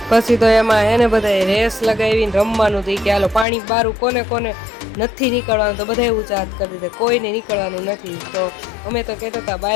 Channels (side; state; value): right; drops out; at 3.5 s